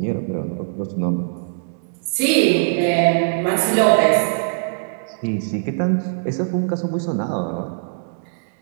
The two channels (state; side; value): silent; left; digital silence